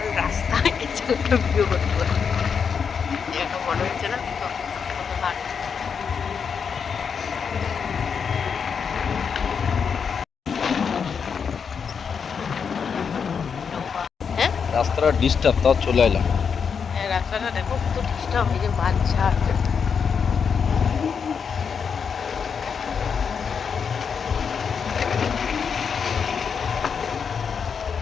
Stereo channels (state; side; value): quieter; right; 6.4 dB